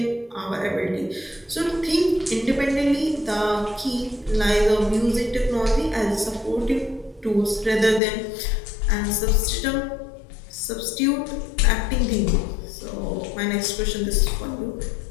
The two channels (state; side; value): drops out; right; at 8.0 s